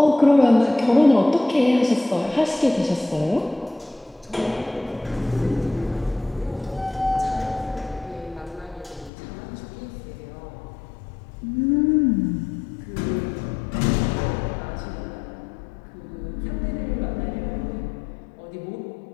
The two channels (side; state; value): right; drops out; at 9.1 s